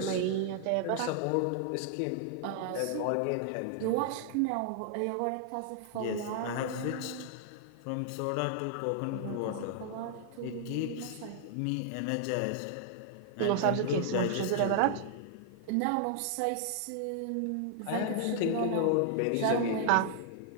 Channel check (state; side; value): different; both; correlation -0.01